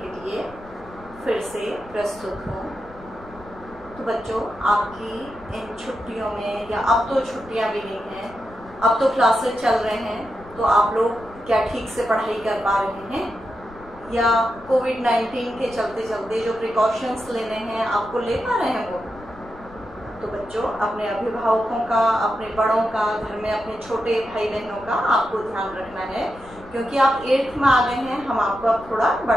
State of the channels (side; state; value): left; noise; rumble, 20 dB below the sound